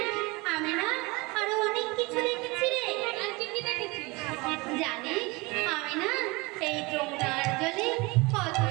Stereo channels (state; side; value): quieter; left; 25.0 dB